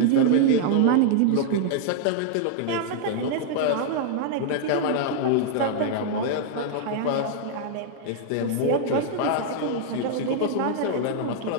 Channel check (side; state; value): both; different; correlation -0.01